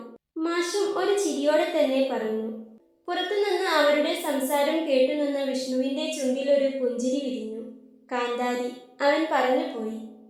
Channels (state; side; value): identical; both; correlation 1.00